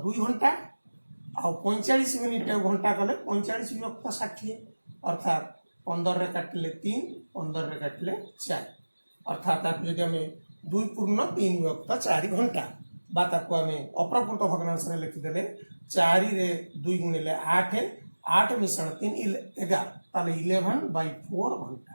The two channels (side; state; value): both; inverted; correlation -1.00